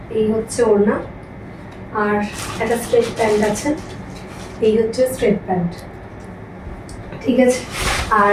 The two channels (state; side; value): identical; both; correlation 1.00